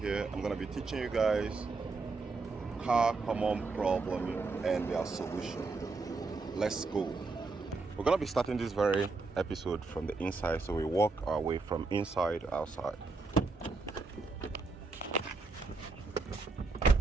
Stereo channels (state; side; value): quieter; left; 3.9 dB